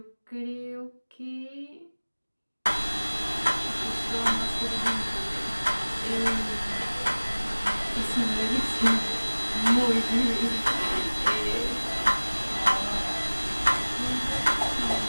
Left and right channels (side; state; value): both; inverted; correlation -1.00